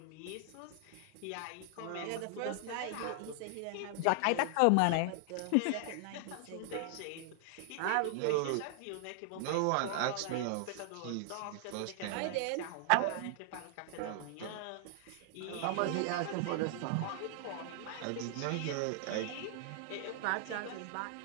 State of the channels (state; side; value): different; both; correlation 0.00